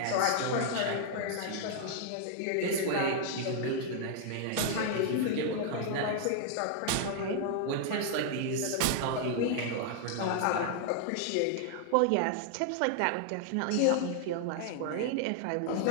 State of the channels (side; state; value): both; different; correlation 0.00